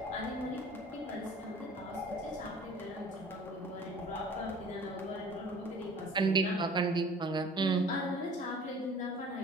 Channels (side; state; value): both; normal; correlation 0.48